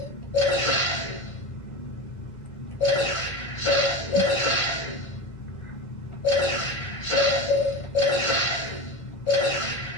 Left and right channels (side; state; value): right; late; 1.8 ms